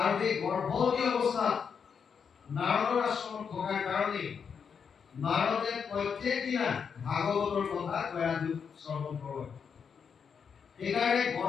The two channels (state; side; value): quieter; right; 6.6 dB